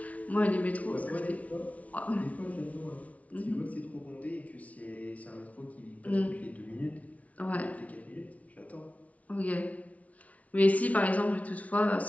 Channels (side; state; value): right; late; 0.068 ms